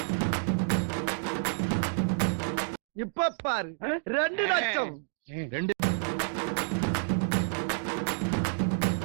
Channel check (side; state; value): left; silent; digital silence